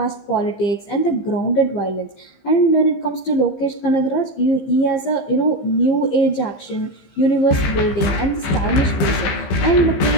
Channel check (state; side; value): late; right; 15 ms